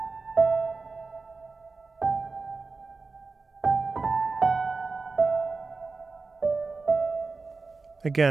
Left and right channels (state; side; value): quieter; left; 4.1 dB